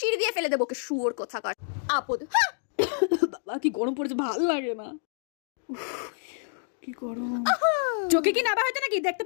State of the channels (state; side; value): silent; right; digital silence